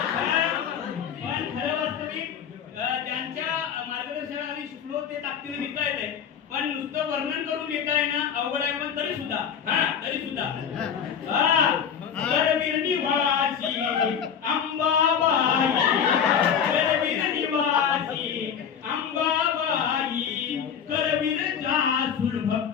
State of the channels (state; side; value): quieter; right; 7.8 dB